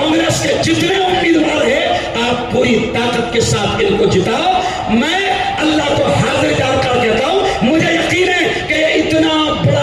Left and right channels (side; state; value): both; identical; correlation 1.00